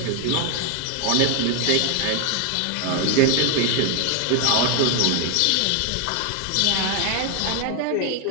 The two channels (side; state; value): both; different; correlation 0.01